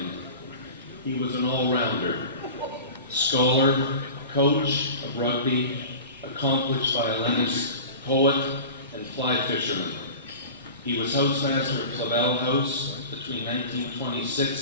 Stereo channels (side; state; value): both; inverted; correlation -0.35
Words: He was an all-rounder, scholar, coach of rugby, accomplished violinist, poet, and fly fisherman. He was housemaster at Flavel House between